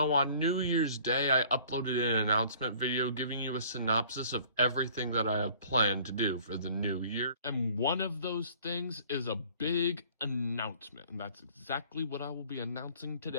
on New Year's Day, I uploaded an announcement video giving you a synopsis of everything that I have planned to do for the new year. And one of those things is a big announcement, and that's exactly what I will be announcing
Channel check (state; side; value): inverted; both; correlation -0.53